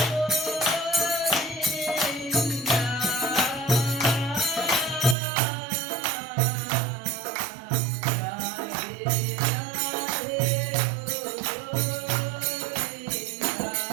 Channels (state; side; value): drops out; left; at 5.2 s